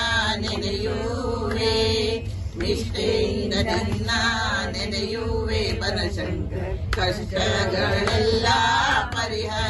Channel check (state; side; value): identical; both; correlation 1.00